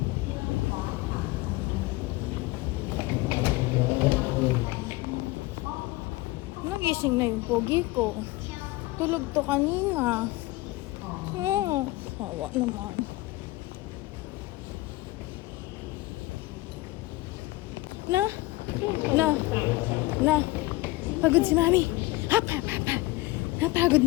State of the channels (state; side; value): quieter; right; 20.3 dB